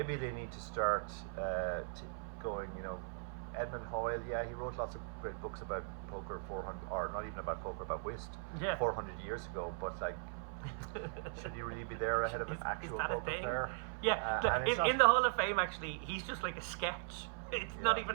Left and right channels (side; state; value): left; silent; 52 dB below the other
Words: they need to start going, Edmund Hoyle, yeah, he wrote lots of great books about poker 400, or not even about poker, about whist, 400 years ago, but like, should he really be there ahead of an actual poker player? Yeah, in the Hall of Fame, actually, he's just like a sketch. It's not